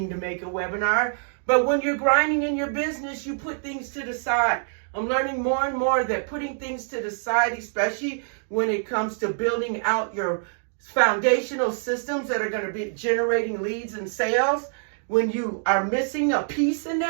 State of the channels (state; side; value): silent; left; digital silence